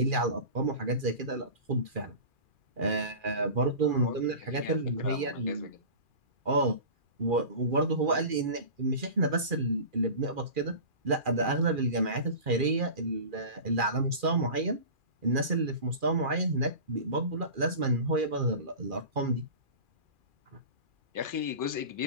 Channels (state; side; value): late; left; 2.4 ms